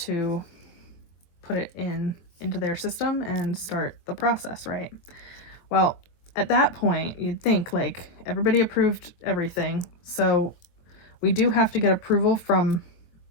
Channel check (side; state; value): right; late; 23 ms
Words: put it into their system and start the process, right? Well, at that point, you'd think, like, everybody approved everything. So we do have to get approval from